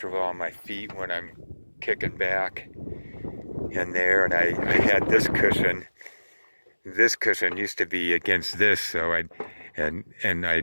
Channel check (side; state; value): both; inverted; correlation -1.00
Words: on my feet when I'm kicking back in there. And I had this cushion. This cushion used to be against this, so I'd